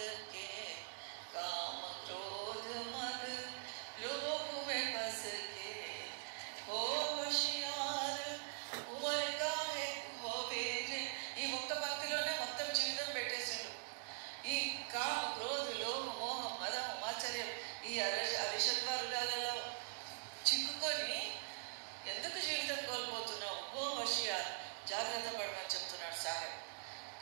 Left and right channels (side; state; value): left; silent; digital silence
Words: के, काम क्रोध मद लोभ में फंस के हो होशियार उमर का है होवे रे. ఈ ఒక్క పంక్తిలోనే మొత్తం జీవితం పెట్టేసిండు. ఈ కామ క్రోధ లోభ మోహం మదం ఆశ్చర్యం ఈ అరిషద్వారులలో చిక్కుకొని ఎందుకు జీవితం కోల్పోతున్నావు? ఓ హోషియార్, జాగ్రత్త పడమని చెప్తున్నాడు సాహెబ్.